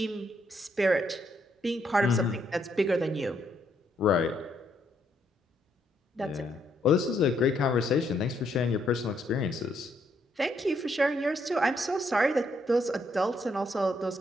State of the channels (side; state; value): both; normal; correlation 0.74